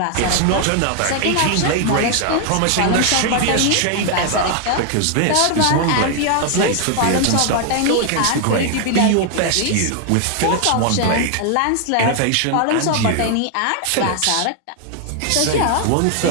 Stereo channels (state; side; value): different; both; correlation 0.00